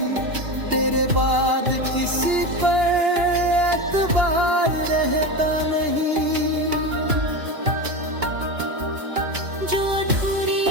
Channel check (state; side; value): late; left; 2.8 ms